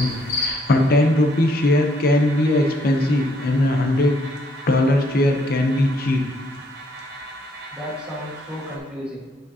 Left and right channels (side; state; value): both; normal; correlation 0.69